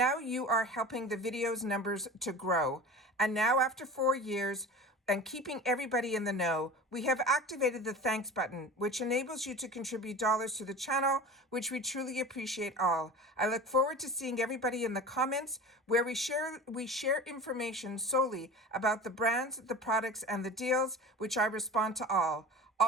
you are helping the video's numbers to grow. And now after 4 years, and keeping everybody in the know, we have activated the thanks button, which enables you to contribute dollars to the channel, which we truly appreciate all. I look forward to seeing everybody in the comments where we share information solely about the brands, the products, and the deals, which I respond to all.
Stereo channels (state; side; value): normal; both; correlation 0.35